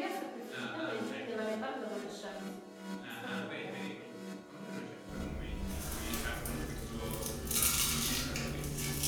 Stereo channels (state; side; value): identical; both; correlation 1.00